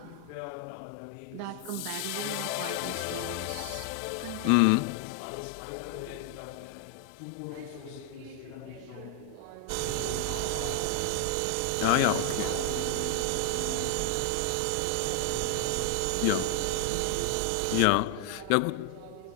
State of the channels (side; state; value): both; different; correlation 0.00